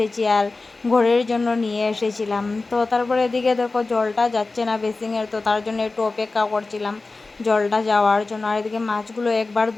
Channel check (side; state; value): right; quieter; 3.6 dB